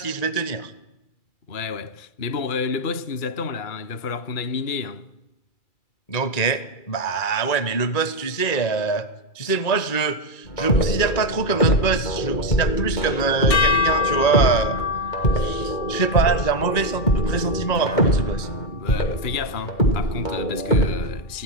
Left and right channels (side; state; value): right; late; 2.3 ms